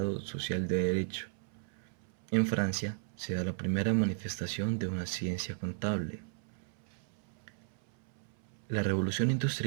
Social de Derecho. En Francia se da la primera manifestación de una ciencia contable. La Revolución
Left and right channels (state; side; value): silent; left; 55 dB below the other